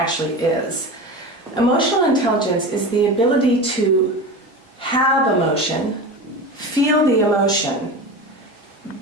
is. Emotional intelligence is the ability to have emotion, feel the emotion,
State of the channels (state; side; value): normal; both; correlation 0.28